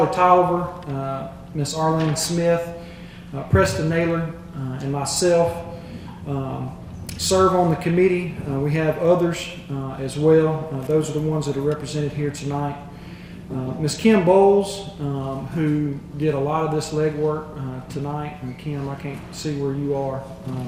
Tolliver, Miss Arlene Smith, Preston Naylor, and myself serve on the committee. We have others as well. Those are the ones that are represented here tonight. Ms. Kim Bowles, who did a lot of this legwork tonight. And Kim, I can't see where you are,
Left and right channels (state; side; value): identical; both; correlation 1.00